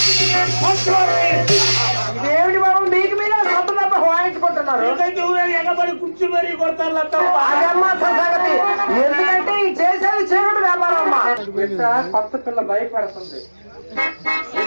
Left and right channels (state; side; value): inverted; both; correlation -1.00